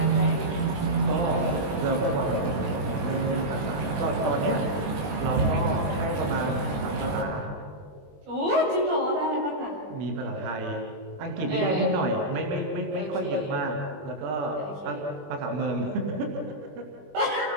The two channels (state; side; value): late; left; 20 ms